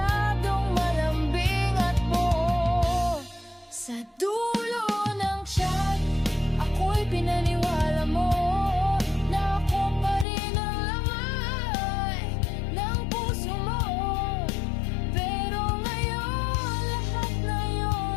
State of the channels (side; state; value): right; drops out; at 10.2 s